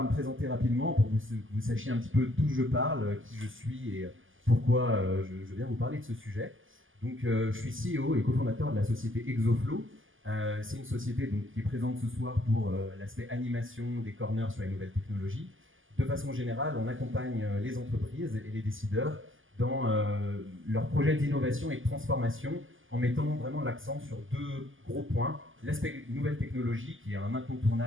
me présenter rapidement pour que vous sachiez un petit peu d'où je parle, qui je suis et pourquoi je viens vous parler de ce sujet. Donc, je suis CEO et cofondateur de la société Exoflow. C'est une société donc, qui est présente ce soir pour l'aspect animation des corners sur les nouvelles technologies. De façon générale, on accompagne les entreprises et les décideurs dans leurs projets d'innovation et de transformation en mettant vraiment l'accent sur deux gros points. L'aspect nouvelle technologie, qui est un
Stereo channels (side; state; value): left; late; 0.58 ms